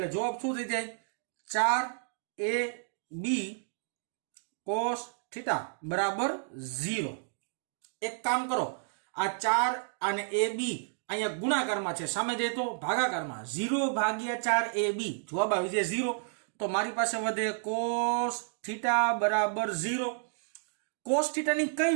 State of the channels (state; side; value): silent; left; digital silence